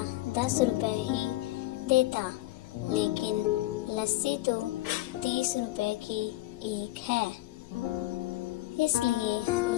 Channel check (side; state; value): right; quieter; 17.7 dB